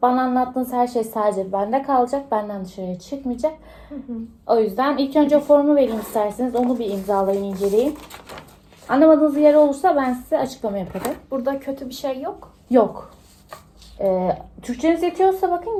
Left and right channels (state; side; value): identical; both; correlation 1.00